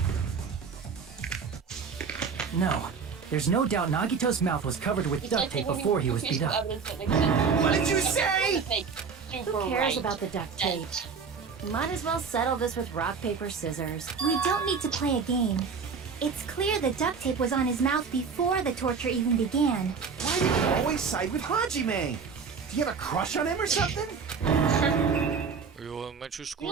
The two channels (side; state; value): left; quieter; 5.6 dB